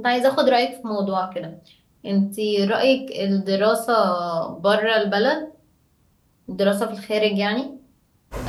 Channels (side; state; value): both; identical; correlation 1.00